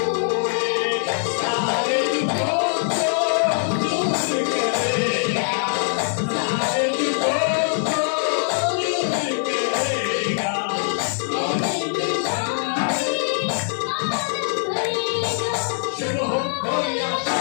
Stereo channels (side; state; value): right; silent; 62 dB below the other